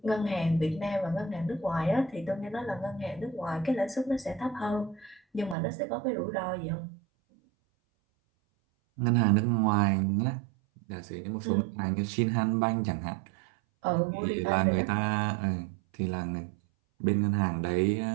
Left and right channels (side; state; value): left; drops out; at 5.6 s